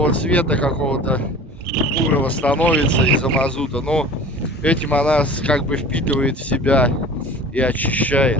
цвета какого-то бурого становится из-за мазута, но этим она как бы впитывает в себя и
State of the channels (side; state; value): both; normal; correlation 0.42